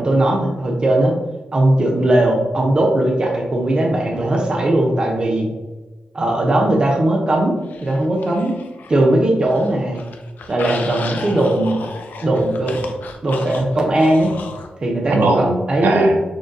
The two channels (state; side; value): normal; both; correlation 0.88